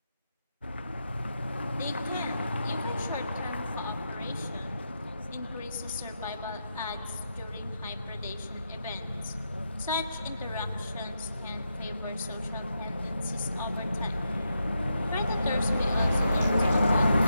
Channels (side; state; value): both; inverted; correlation -0.84